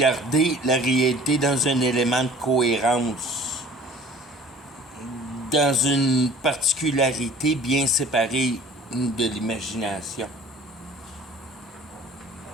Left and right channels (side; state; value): both; normal; correlation 0.48